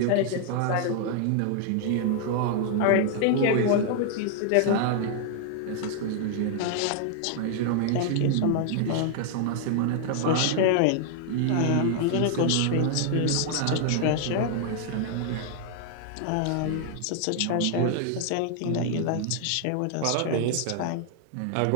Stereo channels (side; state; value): both; different; correlation 0.00